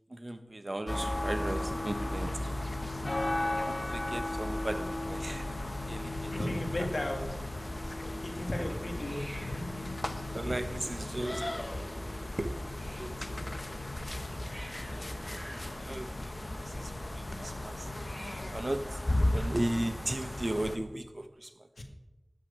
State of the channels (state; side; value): normal; both; correlation 0.98